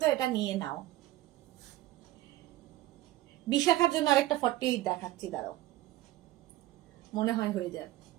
এটা নিয়ে নাও। বিশাখার জন্য আরেকটা 48 দেখাচ্ছি, দাঁড়াও, মনে হয় হয়ে যাবে।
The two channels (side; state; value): left; quieter; 16.0 dB